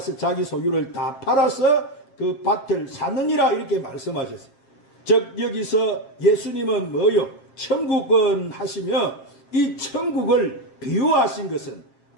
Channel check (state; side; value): late; right; 7.5 ms